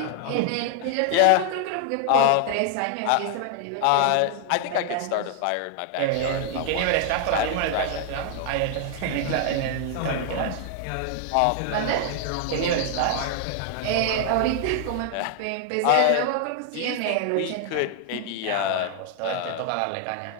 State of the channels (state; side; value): different; both; correlation 0.00